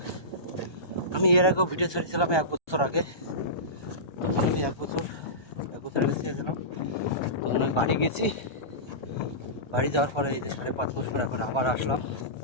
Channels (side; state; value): right; late; 1.3 ms